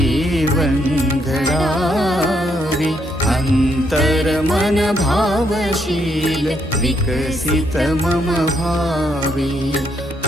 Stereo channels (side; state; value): both; normal; correlation 0.75